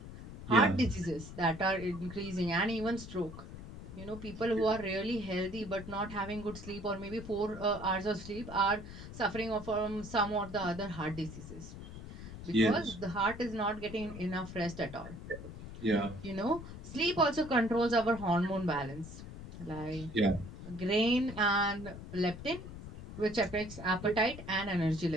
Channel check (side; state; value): left; noise; rumble, 12 dB below the sound